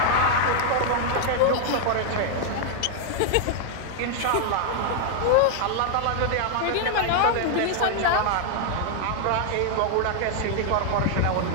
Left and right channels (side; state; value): both; different; correlation 0.00